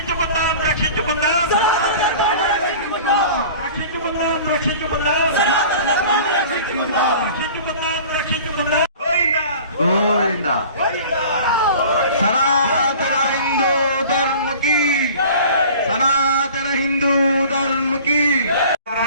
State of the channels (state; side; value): inverted; both; correlation -0.43